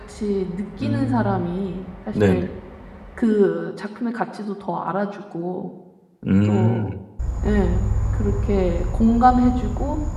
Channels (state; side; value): identical; both; correlation 1.00